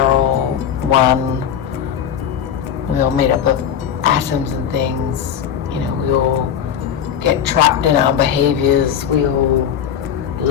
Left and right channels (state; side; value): quieter; right; 9.0 dB